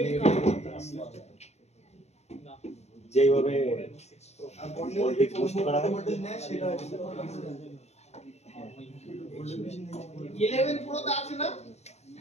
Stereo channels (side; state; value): right; late; 0.31 ms